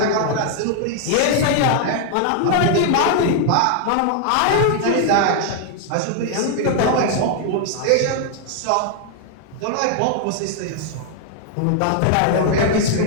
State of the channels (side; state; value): both; different; correlation 0.00